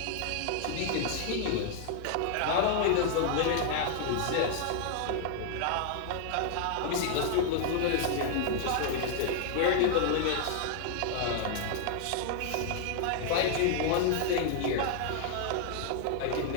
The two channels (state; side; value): different; both; correlation 0.00